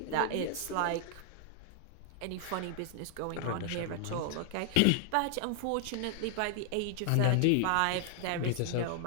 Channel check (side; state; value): both; different; correlation 0.00